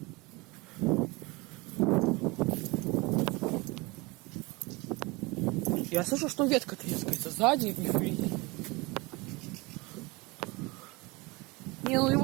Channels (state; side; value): quieter; left; 24.6 dB